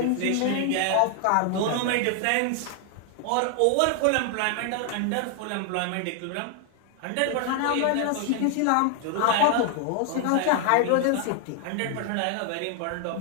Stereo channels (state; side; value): different; both; correlation 0.00